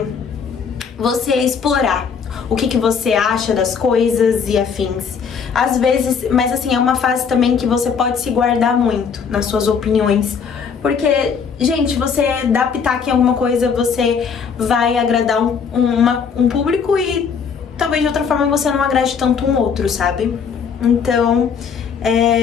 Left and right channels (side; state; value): right; quieter; 6.3 dB